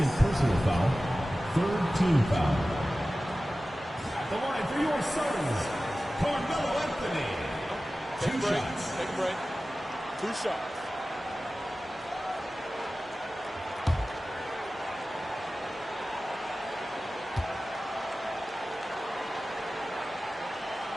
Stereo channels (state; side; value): normal; both; correlation 0.96